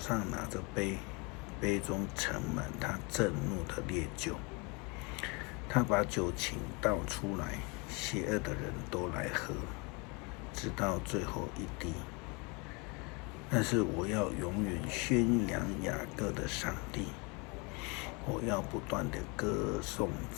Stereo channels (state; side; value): quieter; right; 29.9 dB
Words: 拿着杯，杯中盛满他震怒的烈酒。他把酒倾倒出来，邪恶的人都来喝，直到最后一滴。但是我要永远宣扬雅各的上帝，我要不断的歌颂